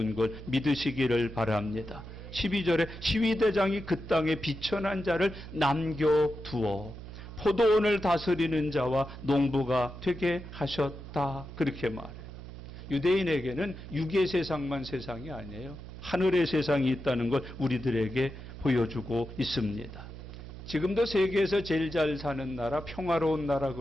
걸 믿으시기를 바랍니다. 12절에 시위대장이 그 땅에 비천한 자를 남겨두어 포도원을 다스리는 자와 농부가 되게 하셨다. 그렇게 말해요. 유대인에게는 육의 세상만 세상이 아니에요. 하늘의 세상이 있다는 걸 우리들에게 보여주고 있습니다. 지금도 세계에서 제일 잘 사는 나라, 평화로운 나라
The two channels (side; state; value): right; noise; hum, 12 dB below the sound